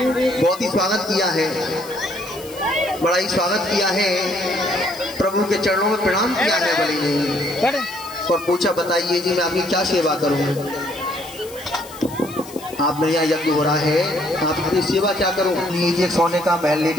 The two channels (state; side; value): noise; left; hiss, 18 dB below the sound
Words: बहुत ही स्वागत किया है, बड़ा ही स्वागत किया है, प्रभु के चरणों में प्रणाम किया है बलि ने और पूछा बताइए जी मैं आपकी क्या सेवा करूं। आप मेरे यहाँ यज्ञ हो रहा है, आपकी सेवा क्या करूं। लीजिए सोने का महल ले